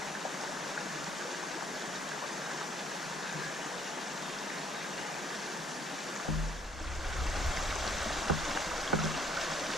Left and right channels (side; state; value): both; normal; correlation 0.64